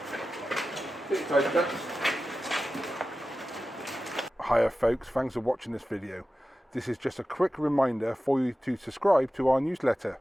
Hiya folks, thanks for watching this video. This is just a quick reminder for you to subscribe to our newsletter,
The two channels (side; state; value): both; normal; correlation 0.94